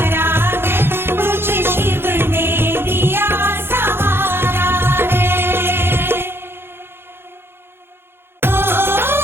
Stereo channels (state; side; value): late; left; 0.11 ms